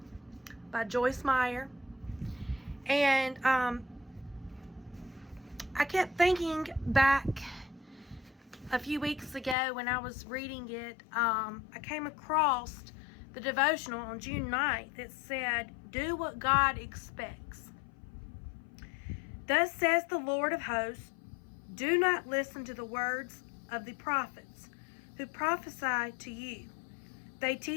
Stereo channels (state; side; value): drops out; right; at 9.6 s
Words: by Joyce Meyer, and I kept thinking back a few weeks ago when I was reading it. I came across the devotional on June 9th that said, "Do what God expects. Thus says the Lord of hosts, do not listen to the words of the prophets who prophesy to you. They